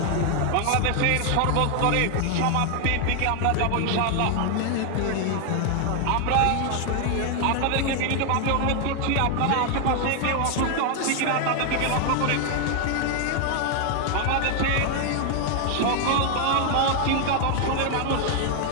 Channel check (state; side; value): different; both; correlation 0.00